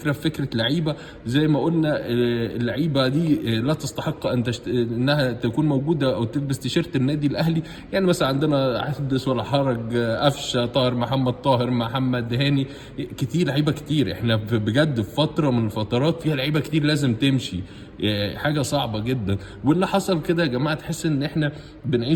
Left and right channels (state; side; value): identical; both; correlation 1.00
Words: في فكره لعيبه. زي ما قلنا اللعيبه دي لا تستحق انها تكون موجوده او تلبس تيشيرت النادي الاهلي. يعني مثلا عندنا حدث ولا حرج، قفشه، طاهر محمد، طاهر محمد، هاني، كتير لعيبه كتير. احنا بجد في فتره من الفترات فيها لعيبه كتير لازم تمشي. حاجه صعبه جدا. واللي حصل كده يا جماعه تحس ان احنا